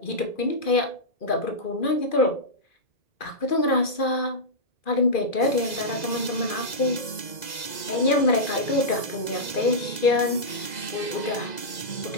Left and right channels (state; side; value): late; right; 2.0 ms